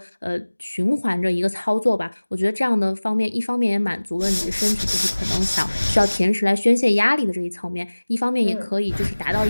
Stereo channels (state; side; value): inverted; both; correlation -1.00